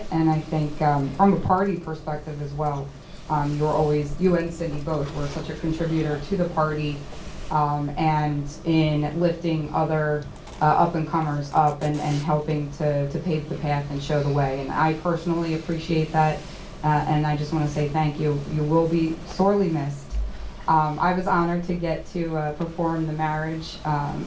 And I think from a party perspective as well, you and Cindy both were such a contributor to the party and in lifting other up-and-comers up and helping to pave the path and show the way. And I personally appreciate that, and I just want to say thank you. You will be sorely missed. I was honored to get to perform the marriage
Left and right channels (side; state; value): both; identical; correlation 1.00